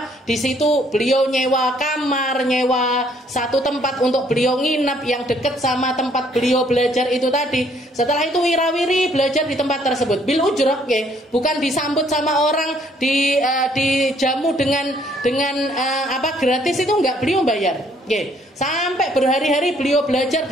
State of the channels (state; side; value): normal; both; correlation 0.64